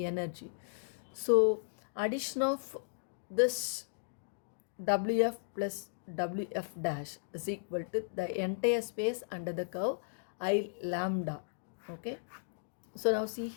So addition of this Wf plus Wf dash is equal to the entire space under the curve I lambda. Okay, so now see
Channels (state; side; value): silent; right; digital silence